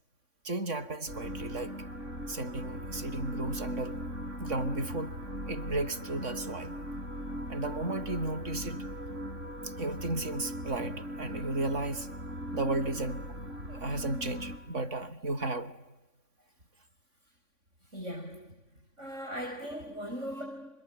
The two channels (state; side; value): late; left; 3.6 ms